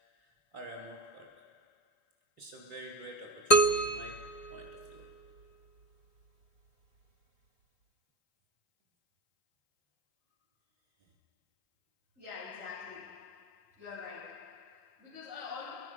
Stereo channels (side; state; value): right; late; 3.4 ms